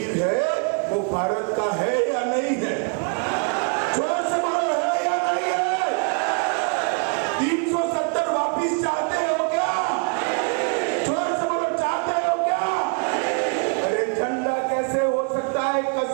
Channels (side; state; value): left; quieter; 38.0 dB